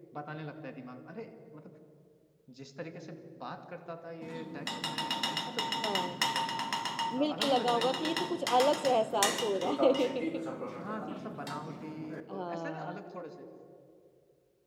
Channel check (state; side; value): identical; both; correlation 1.00